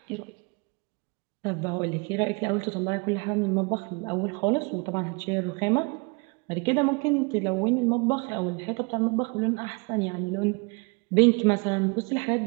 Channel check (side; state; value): left; quieter; 30.3 dB